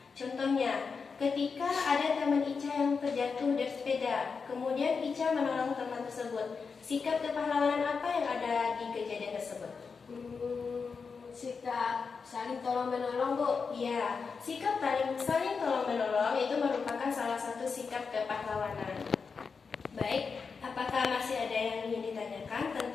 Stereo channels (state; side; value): quieter; right; 5.3 dB